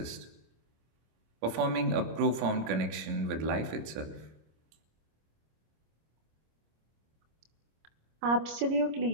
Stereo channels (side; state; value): left; late; 26 ms